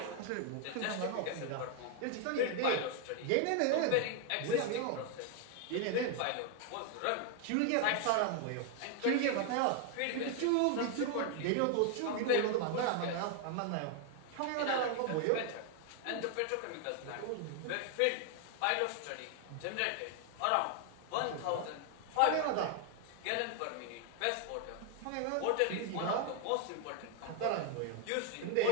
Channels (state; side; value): different; both; correlation 0.01